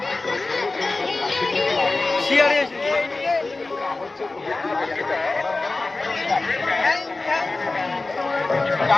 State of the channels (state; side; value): quieter; right; 3.3 dB